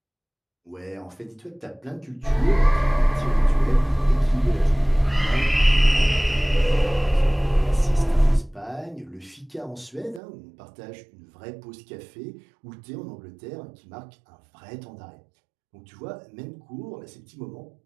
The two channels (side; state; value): left; drops out; at 10.2 s